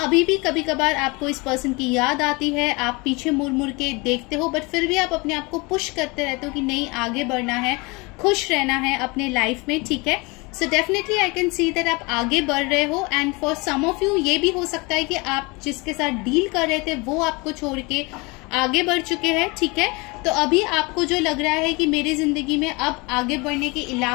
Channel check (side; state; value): right; quieter; 26.6 dB